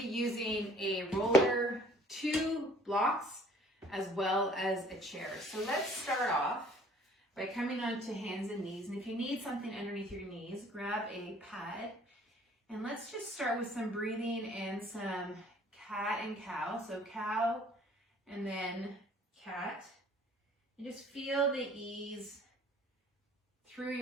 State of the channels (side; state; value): both; normal; correlation 0.55